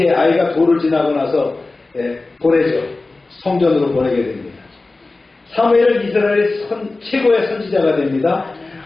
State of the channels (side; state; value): right; quieter; 3.4 dB